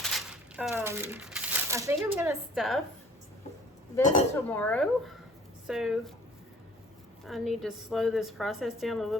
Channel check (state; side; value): normal; both; correlation 0.53